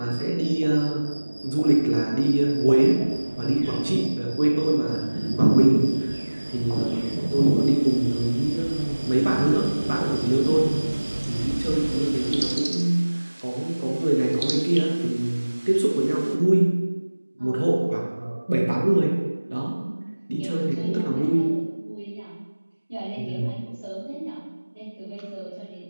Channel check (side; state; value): both; inverted; correlation -1.00